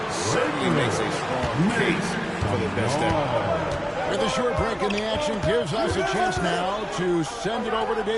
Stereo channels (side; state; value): both; identical; correlation 1.00